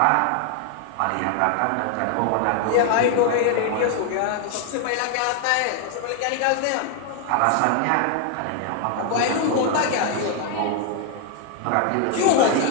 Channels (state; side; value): different; both; correlation 0.00